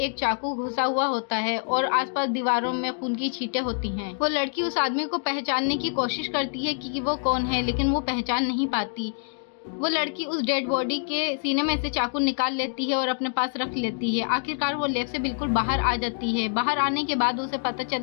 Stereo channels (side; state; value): right; silent; digital silence